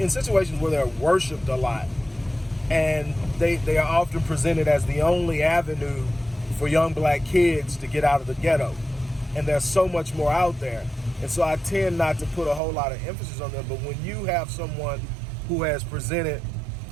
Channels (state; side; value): drops out; left; at 12.6 s